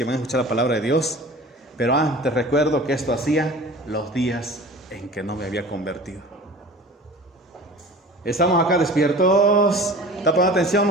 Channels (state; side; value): normal; both; correlation 0.40